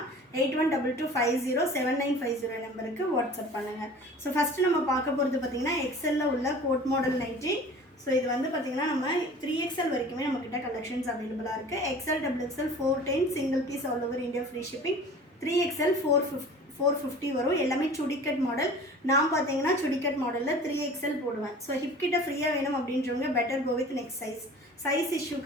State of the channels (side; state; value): both; normal; correlation 0.43